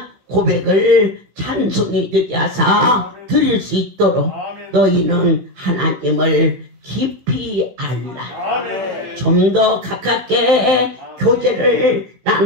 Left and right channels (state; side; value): late; left; 16 ms